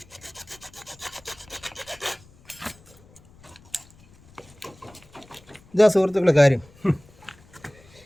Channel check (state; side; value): noise; left; rumble, 26 dB below the sound